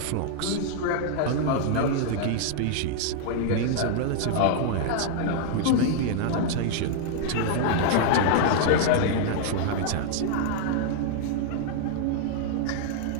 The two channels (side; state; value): both; different; correlation 0.00